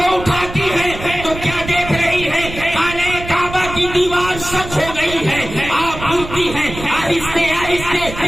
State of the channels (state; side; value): noise; right; rumble, 11 dB below the sound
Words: اٹھاتی ہے تو کیا دیکھ رہی ہے؟ خانہ کعبہ کی دیوار سچ ہو گئی ہے. آپ اٹھتی ہیں، آہستہ